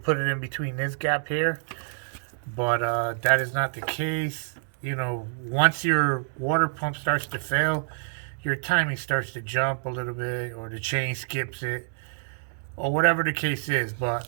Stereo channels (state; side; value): silent; left; digital silence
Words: it in between this gap here, but that is not the case. Once your water pump starts to fail, your timing starts to jump a little bit, or the chain skips it, or whatever the case is. But